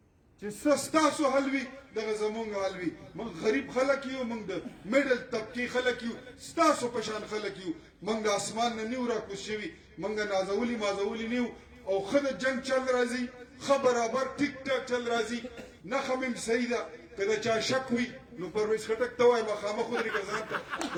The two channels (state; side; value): identical; both; correlation 1.00